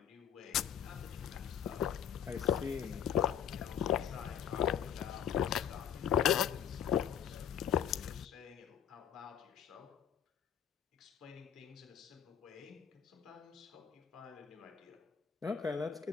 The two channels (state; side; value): quieter; right; 9.0 dB